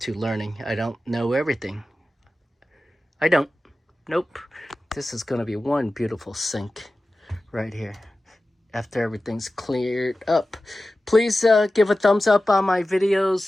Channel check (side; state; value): both; normal; correlation 0.95